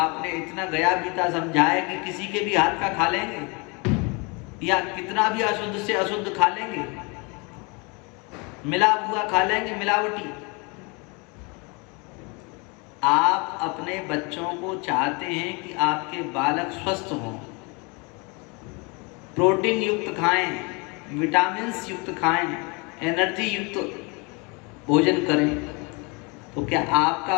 इतना गया बीता समझाया कि किसी के भी हाथ का खा लेंगे, या कितना भी अशुद्ध से अशुद्ध खा लेंगे, मिला हुआ खा लेंगे, मिलावटी? आप अपने बच्चों को चाहते हैं कि आपके बालक स्वस्थ हों, प्रोटीन युक्त खाएं, विटामिन्स युक्त खाएं, एनर्जी युक्त भोजन करें, तो क्या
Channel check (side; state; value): right; quieter; 29.9 dB